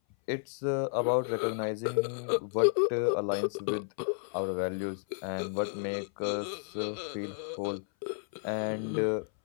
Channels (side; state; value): right; silent; 56 dB below the other